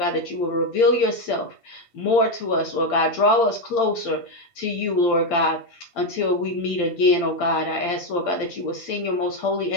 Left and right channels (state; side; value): late; right; 8.7 ms